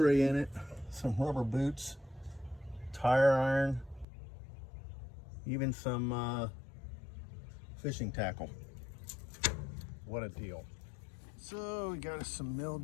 in it, some rubber boots, tire iron, even some fishing tackle. What a deal. So we got us some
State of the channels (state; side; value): drops out; right; at 4.0 s